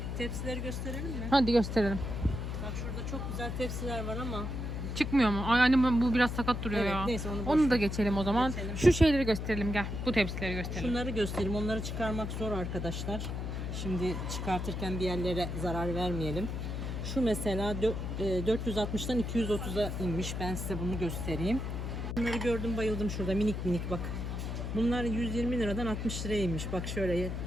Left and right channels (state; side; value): noise; left; hum, 4 dB below the sound